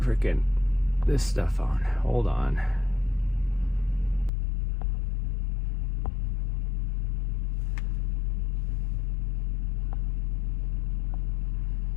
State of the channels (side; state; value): right; drops out; at 4.3 s